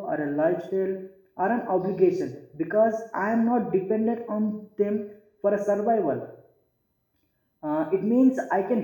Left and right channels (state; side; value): identical; both; correlation 1.00